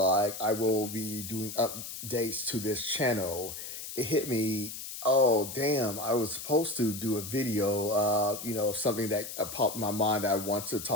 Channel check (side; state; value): left; noise; hiss, 9 dB below the sound